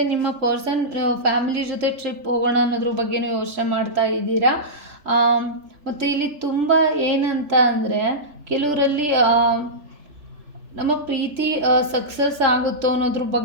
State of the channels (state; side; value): late; left; 3.4 ms